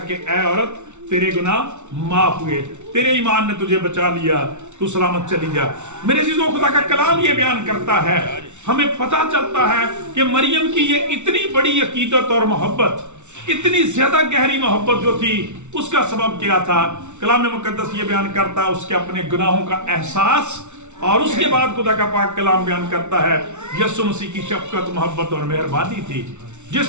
کہ اے عورت تیرے گناہ معاف ہوئے، تیرے ایمان نے تجھے بچا لیا، تو سلامت چلی جا۔ میرے عزیزوں، خدا کا کلام یہ بیان کرتا ہے، ہمیں پتہ چلتا ہے کہ مریم کی یہ اتنی بڑی عقیدت اور محبت، اتنی زیادہ گہری محبت جو تھی، اس کا سبب کیا تھا؟ کلام مقدس یہ بیان کرتا ہے اس کے اپنے گناہوں کا احساس، اور اس کے بعد خدا کا پاک کلام بیان کرتا ہے یسوع مسیح کی شفقت، محبت اور مہربانی تھی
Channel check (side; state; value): left; late; 0.83 ms